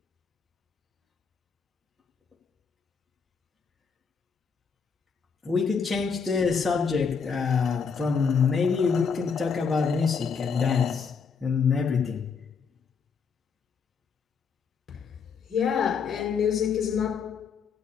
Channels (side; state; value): right; quieter; 5.8 dB